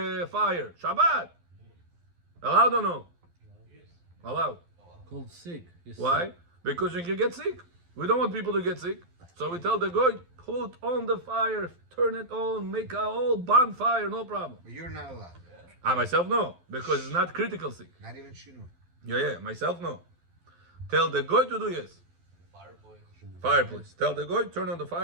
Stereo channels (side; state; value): left; late; 12 ms